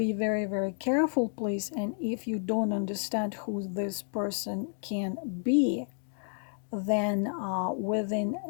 very, very careful, please. And if you don't understand who this person can be, then within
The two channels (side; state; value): right; silent; 57 dB below the other